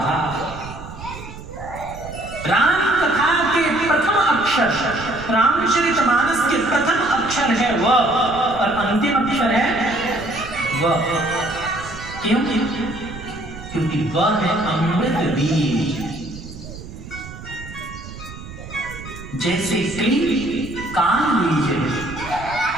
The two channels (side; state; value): right; noise; rumble, 13 dB below the sound